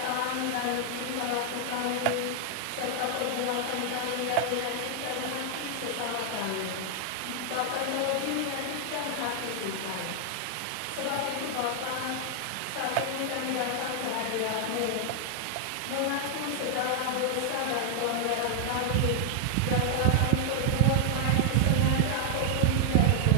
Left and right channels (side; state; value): both; different; correlation 0.00